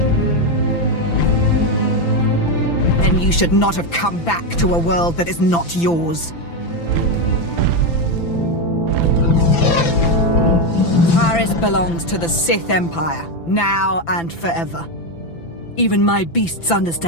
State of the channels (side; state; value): right; late; 5.9 ms